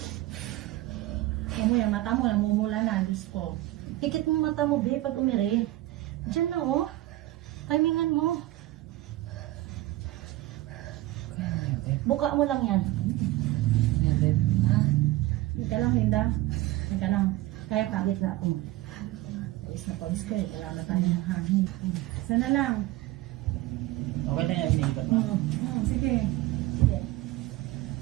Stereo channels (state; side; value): quieter; left; 16.8 dB